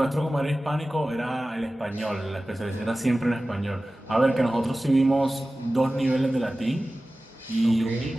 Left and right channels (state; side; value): normal; both; correlation 0.96